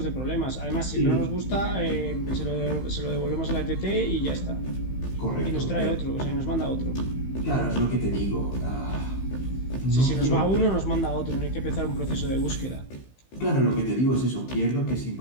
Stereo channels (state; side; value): late; right; 15 ms